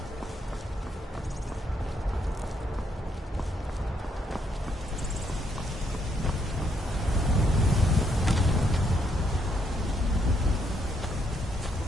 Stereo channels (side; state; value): both; normal; correlation 0.74